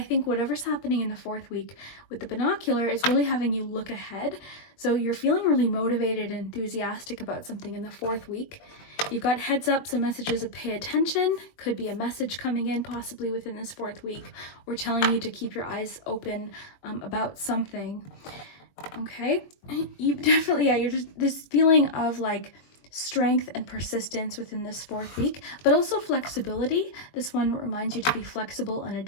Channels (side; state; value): right; late; 21 ms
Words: think whatever's happening in the 4th week with the binocular is really having you look ahead. So you're feeling really motivated and enthusiastic about something in the 4th week. You've got heads up, so messages of pay attention. Could be a message coming in possibly within this 4th week, or telling you to keep your eyes open about something. Okay, you definitely, yeah, you're just this feeling of like strength and persistence within this 4th week, but also flexibility. This one reminds you to be flexible and